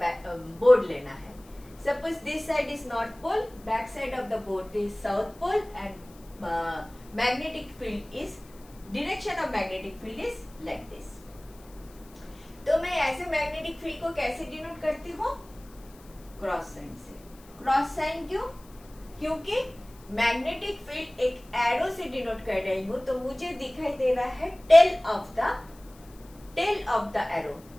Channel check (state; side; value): noise; left; hiss, 26 dB below the sound